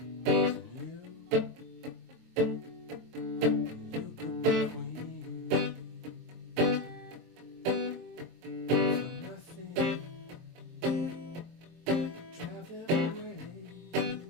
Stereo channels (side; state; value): left; late; 23 ms